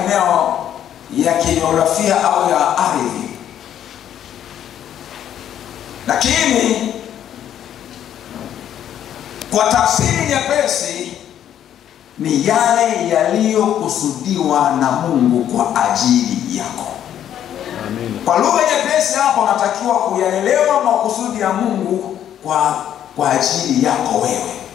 ya kijiografia au ya ardhi. Lakini kwa tafsiri nyepesi ni yale yaliyokusudiwa na Mungu kwa ajili yako. Amen. Kwa lugha nyepesi hapo unatakiwa kuyaelewa makusudi ya Mungu kwa ajili yako wewe.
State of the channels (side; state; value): right; quieter; 10.4 dB